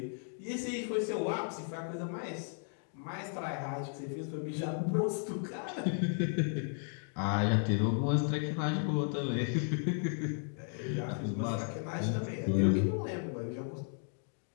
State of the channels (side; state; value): right; silent; 55 dB below the other